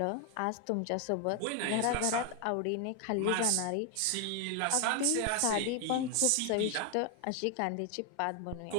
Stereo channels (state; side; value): different; both; correlation 0.01